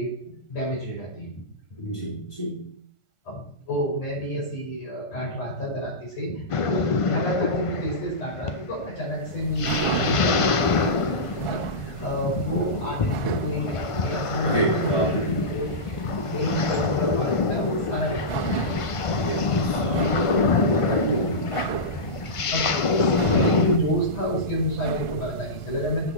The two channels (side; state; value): right; late; 1.5 ms